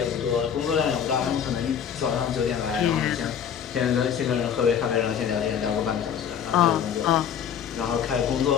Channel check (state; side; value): quieter; right; 8.3 dB